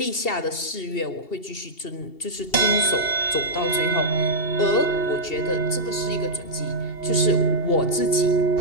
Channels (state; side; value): late; right; 2.7 ms